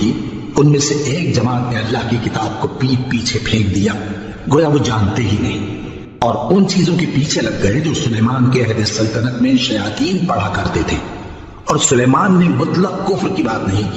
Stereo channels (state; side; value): identical; both; correlation 1.00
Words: ان میں سے ایک جماعت نے اللہ کی کتاب کو پیٹ پیچھے پھینک دیا، گویا وہ جانتے ہی نہیں، اور ان چیزوں کے پیچھے لگ گئے جو سلیمان کے عہد سلطنت میں شیاطین پڑھا کرتے تھے۔ اور سلیمان نے مطلق کفر کی بات نہیں